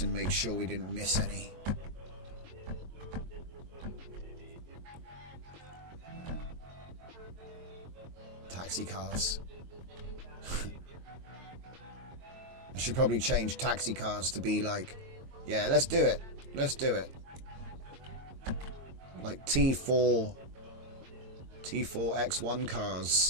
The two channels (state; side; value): late; left; 22 ms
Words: make sure we didn't miss any. Taxi cars. I should probably change taxi cars to be like, yeah, let's do it. Let's do it. like T4 X1